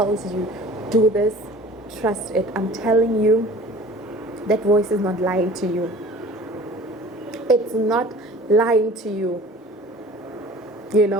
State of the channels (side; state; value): both; normal; correlation 0.44